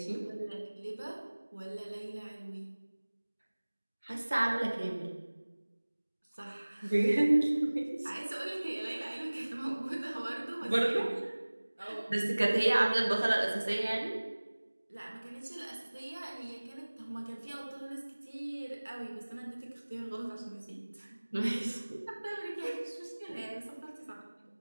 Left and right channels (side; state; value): both; inverted; correlation -1.00